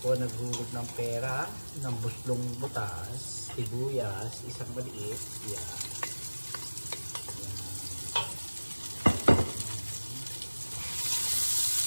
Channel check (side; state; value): both; inverted; correlation -1.00